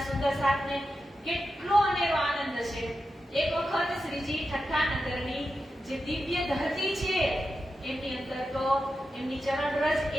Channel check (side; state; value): both; normal; correlation 0.89